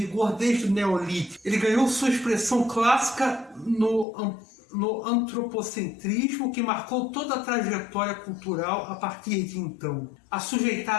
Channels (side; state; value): right; drops out; at 4.0 s